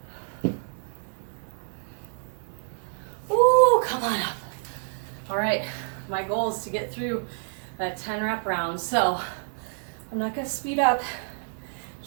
Come on up. All right, my goal is to get through that 10 rep round. So I'm not gonna speed up,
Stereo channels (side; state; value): left; silent; 58 dB below the other